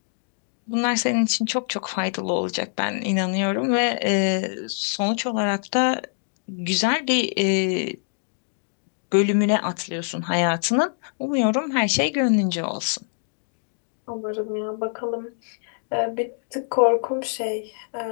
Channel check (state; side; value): silent; right; digital silence